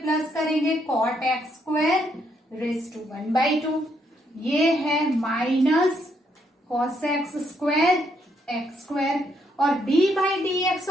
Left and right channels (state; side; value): normal; both; correlation 0.74